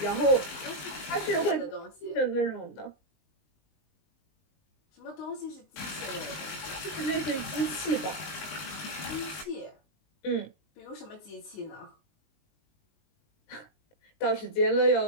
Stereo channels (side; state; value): right; late; 19 ms